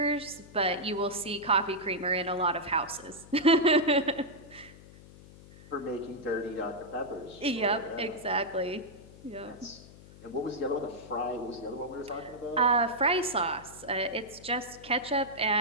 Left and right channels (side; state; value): left; noise; hum, 20 dB below the sound